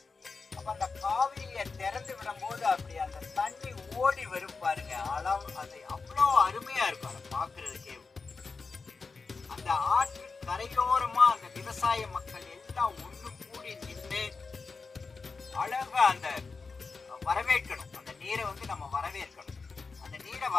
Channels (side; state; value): right; quieter; 4.5 dB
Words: அப்ப அந்த காவிரியை திறந்து விடும் போது அப்படி அந்த தண்ணி ஓடி வரும் பாருங்க, அளவு அது அவ்வளோ அருமையா இருக்கும். அதை பார்க்கறதுக்கே அந்த ஆற்று கரையோரமா அந்த விவசாய மக்கள் எல்லாம் ஒண்ணு கூடி நின்று அழகா அந்த வரவேற்கணும். அந்த நீரை நம்ம வரவேற்கணும். அந்த நீரை